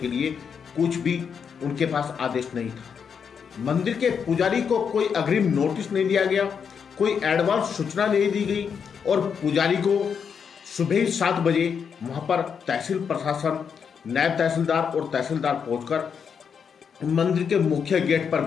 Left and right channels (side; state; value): right; quieter; 6.8 dB